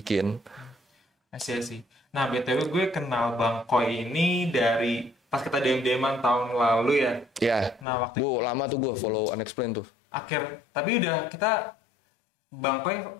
Sih. Nah BTW gue kenal Bang Koi ini dari pas kita DM-an tahun lalu ya. Ya, Nah waktu gue lama tuh gue follow Unexplained tuh. tapi udah kita Bang Koi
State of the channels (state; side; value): drops out; right; at 7.9 s